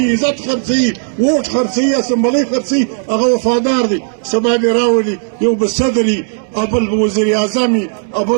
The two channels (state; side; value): silent; left; digital silence